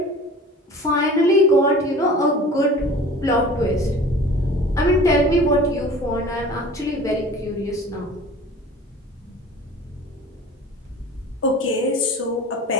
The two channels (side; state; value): both; normal; correlation 0.43